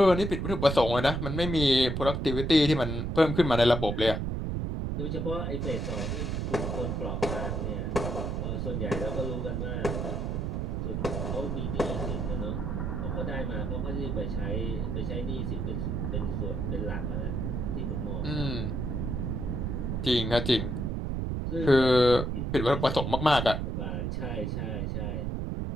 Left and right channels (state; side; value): noise; right; rumble, 1 dB below the sound